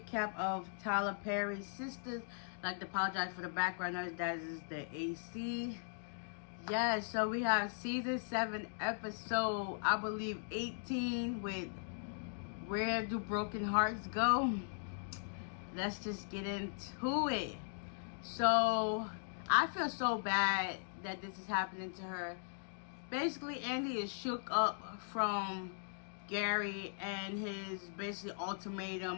of Tyler Perry's Sistas. I'd like to apologize for the background noise. That is the AC. Yeah, so we have season 7 episode, I believe 18, with Where Do Broken Hearts Go? Let's just get into it. So I feel so bad that this is happening to her. Basically, Andy is shook up from Gary and his basically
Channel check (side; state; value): right; silent; digital silence